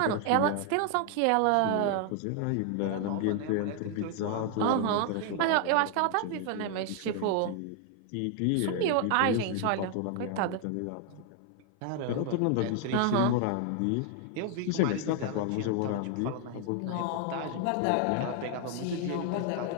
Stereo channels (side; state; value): both; different; correlation 0.00